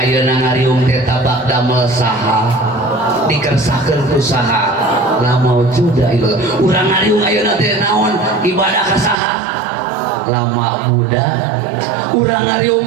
ngariung teh tabak damel saha dikersakeun ku saha la maujuda illallah urang ngariung ayeuna teh naon ibadah ka saha lama muda urang ngariung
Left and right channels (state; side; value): drops out; left; at 9.2 s